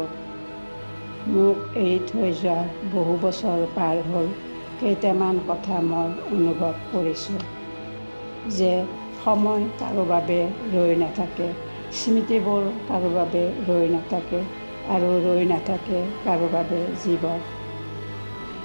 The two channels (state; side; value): inverted; both; correlation -1.00